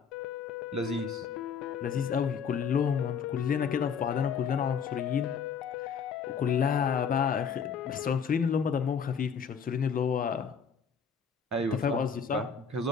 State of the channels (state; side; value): quieter; right; 6.4 dB